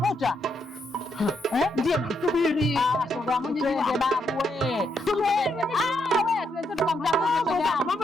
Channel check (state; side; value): normal; both; correlation 0.78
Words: Ndio namsubiri. Shoga mwenyewe babu wewe. Tumsubiri. Wewe tuweze tukamtafuta shoga. Mambo